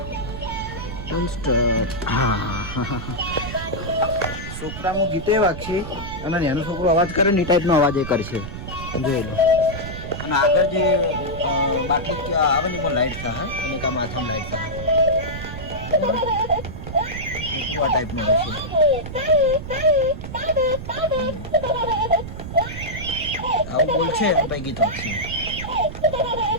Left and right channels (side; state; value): right; noise; rumble, 9 dB below the sound